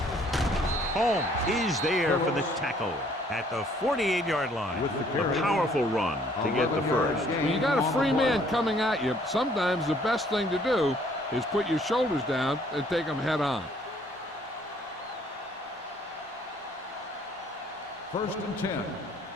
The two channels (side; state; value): both; normal; correlation 0.61